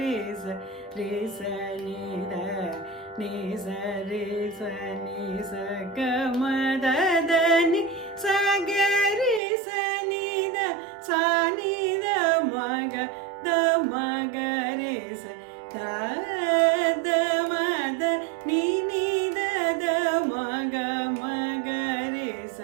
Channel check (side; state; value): left; drops out; at 9.4 s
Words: ரிசனித நிச ரிச நிச கமதனி சகரி சனித சானித மக த மகரி த மத நினித மக மகரி